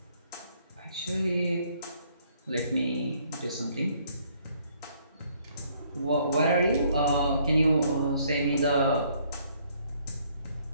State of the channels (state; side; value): inverted; both; correlation -0.65